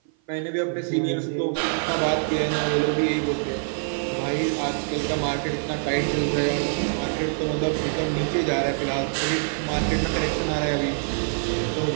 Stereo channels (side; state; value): left; silent; 55 dB below the other